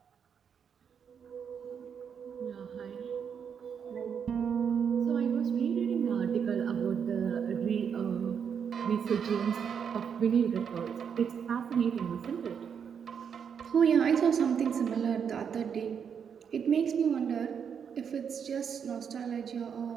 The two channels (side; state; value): left; quieter; 7.3 dB